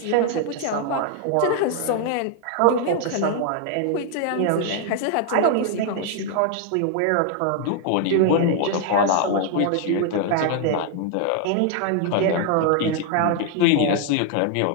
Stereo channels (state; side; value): different; both; correlation 0.00